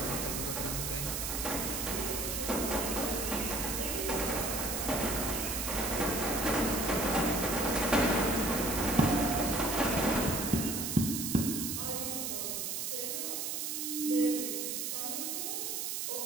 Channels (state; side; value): noise; right; hiss, 2 dB below the sound